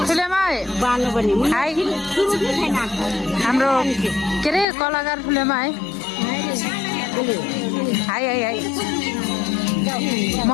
फुलेमा हाई हाम्रो के अरे कलाकार फुलेमा है हाई हाई हाई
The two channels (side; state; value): right; drops out; at 4.7 s